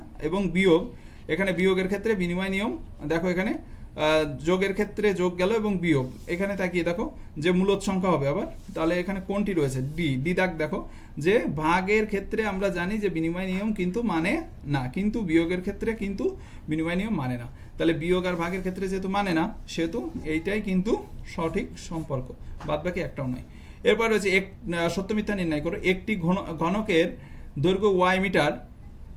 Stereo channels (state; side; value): identical; both; correlation 1.00